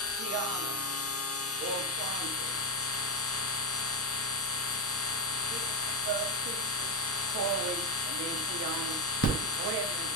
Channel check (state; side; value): normal; both; correlation 0.11